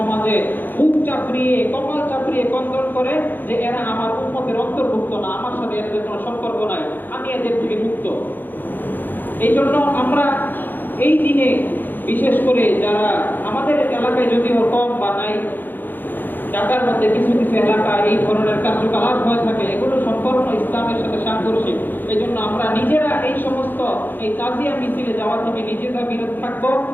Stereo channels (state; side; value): late; right; 0.090 ms